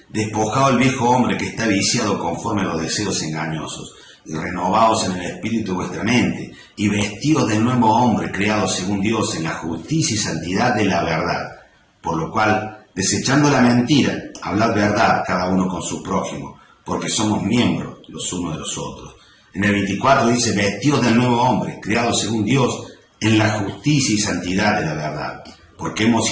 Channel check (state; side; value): identical; both; correlation 1.00